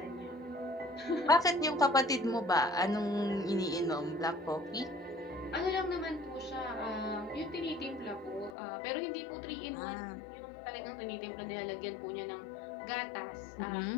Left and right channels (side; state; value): right; drops out; at 8.6 s